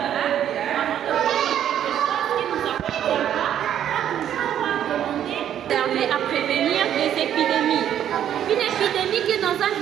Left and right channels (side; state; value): left; quieter; 10.3 dB